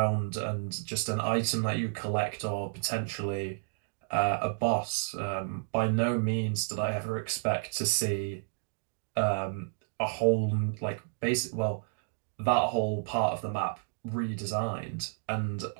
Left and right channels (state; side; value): silent; left; digital silence